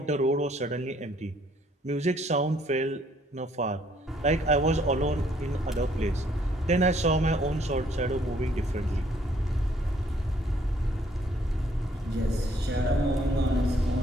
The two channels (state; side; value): normal; both; correlation 0.65